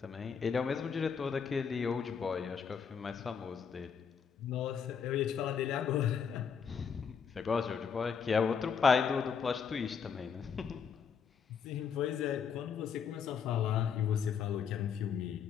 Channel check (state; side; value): quieter; right; 6.7 dB